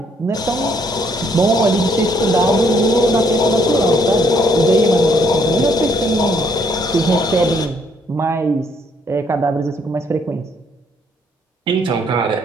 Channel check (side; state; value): both; normal; correlation 0.68